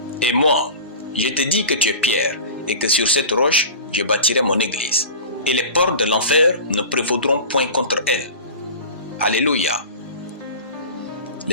Et moi, je te dis que tu es Pierre, et que sur cette roche, je bâtirai mon église, et les portes de l'enfer ne prévaudront point contre elle. » Alléluia.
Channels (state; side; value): inverted; both; correlation -0.34